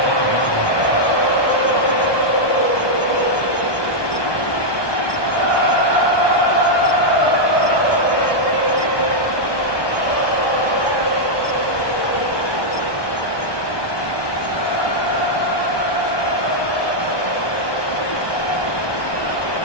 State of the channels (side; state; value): right; late; 1.2 ms